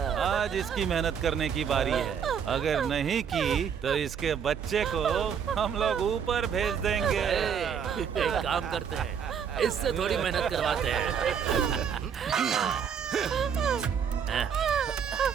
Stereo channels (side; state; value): left; quieter; 7.5 dB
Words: आज इसकी मेहनत करने की बारी है। अगर नहीं की तो इसके बच्चे को हम लोग ऊपर भेज देंगे। एक काम करते हैं, इससे थोड़ी मेहनत करवाते हैं।